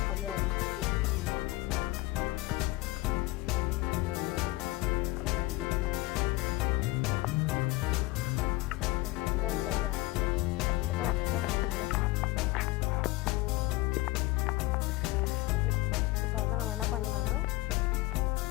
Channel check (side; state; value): right; quieter; 19.5 dB